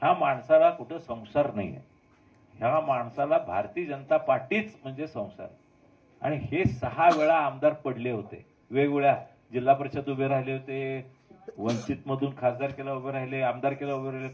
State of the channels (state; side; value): identical; both; correlation 1.00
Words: ह्या माणसाला कुठं संसार नाही आहे. ह्या माणसाला भारतीय जनता पार्टीच म्हणजे संसार. आणि हे 6 वेळा आमदार पडले होते, वेगवेगळ्या जिल्हा परिषद उभे राहिले होते, वंचित मधून खासदार केला उभे राहिले, आमदार केला उभे राहिले,